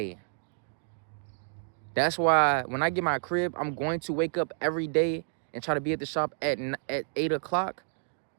that's why when I get my crib, I'm going to wake up every day and try to be at the shop at 8 o'clock,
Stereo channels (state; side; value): silent; left; digital silence